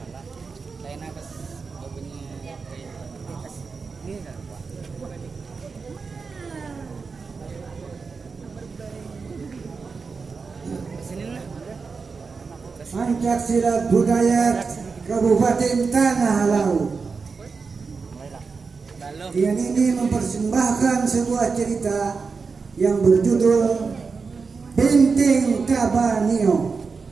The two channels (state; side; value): quieter; left; 4.9 dB